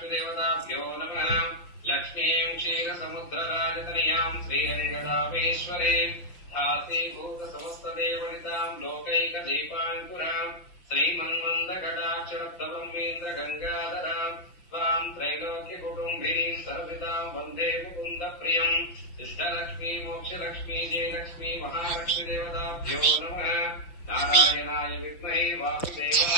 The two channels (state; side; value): late; right; 5.8 ms